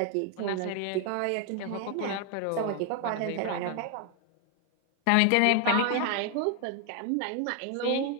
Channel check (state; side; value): different; both; correlation 0.00